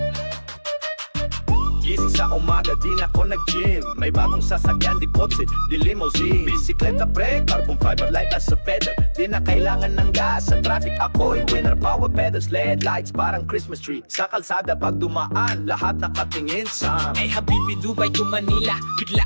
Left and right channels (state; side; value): inverted; both; correlation -1.00